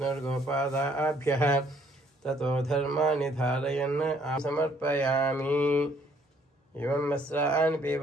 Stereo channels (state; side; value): normal; both; correlation 0.64